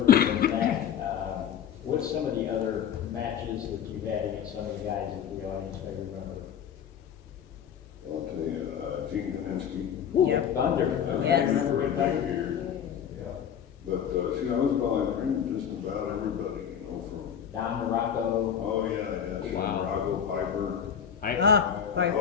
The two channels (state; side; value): quieter; right; 8.5 dB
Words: than that. What's some of the other matches that you had against some of the guys that the audience may remember? I'll tell you, Gene Kaminsky. Yep. Thunder. Yes. Remember Big Thunder? But see, I was behind just about everybody, from. Don Morocco. Oh yeah. Wow. Rocco, Piper, Piper.